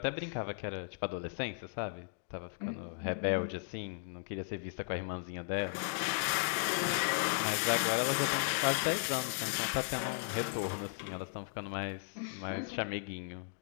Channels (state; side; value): silent; right; digital silence